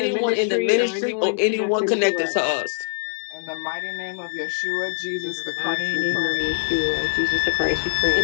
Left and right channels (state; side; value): silent; right; digital silence